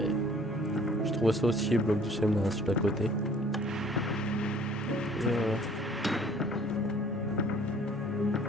je trouvais ça aussi, le bloc du Semna sur la côté.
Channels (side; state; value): both; normal; correlation 0.54